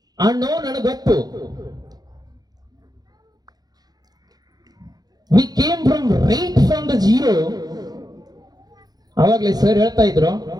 ಆ ನೋವು ನನಗೆ ಗೊತ್ತು. We came right from the zero. ಅವಾಗಲೇ ಸರ್ ಹೇಳ್ತಾ ಇದ್ರು,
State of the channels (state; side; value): late; left; 0.19 ms